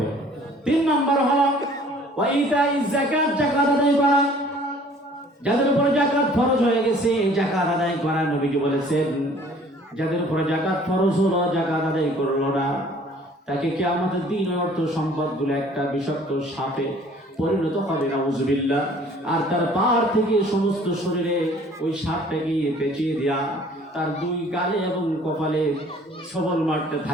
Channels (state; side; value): normal; both; correlation 0.54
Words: 3 নম্বর হলো ওয়া ইতাইজ যাকাত, যাকাত আদায় করা। যাদের উপর যাকাত ফরজ হয়ে গেছে যাকাত আদায় করা। নবীজি বলেছেন যাদের উপর যাকাত ফরজ হলো যাকাত আদায় করলো না, তাকে কিয়ামতের দিন ওই অর্থ সম্পদগুলো একটা বিষাক্ত সাপে পরিণত হবে, নাউযুবিল্লাহ। আর তার পার থেকে সমস্ত শরীরে ওই সাপটাকে পেঁচিয়ে দেয়া, তার 2 গালে এবং কপালে সবল মারতে